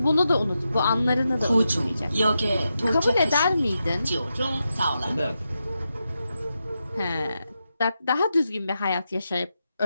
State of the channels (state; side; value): inverted; both; correlation -0.87